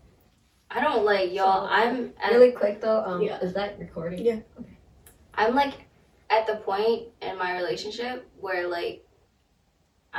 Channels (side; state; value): both; identical; correlation 1.00